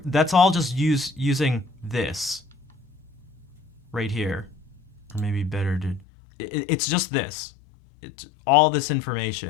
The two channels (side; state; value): right; drops out; at 6.1 s